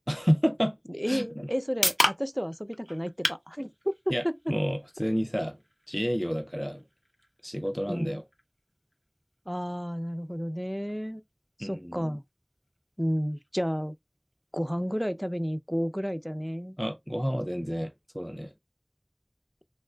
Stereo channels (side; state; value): both; identical; correlation 1.00